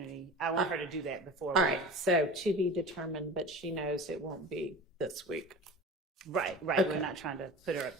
I want her to do that before. All right. So to be determined, but she knows it won't be this week. Right. Okay. We're not trying to put her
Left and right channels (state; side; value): normal; both; correlation 0.35